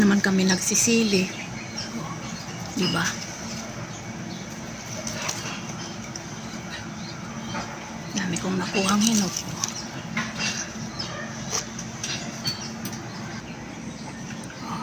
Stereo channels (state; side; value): identical; both; correlation 1.00